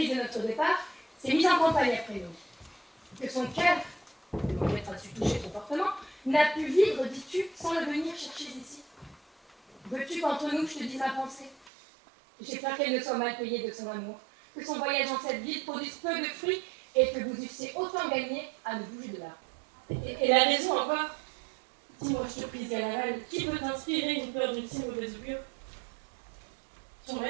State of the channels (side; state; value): left; drops out; at 11.7 s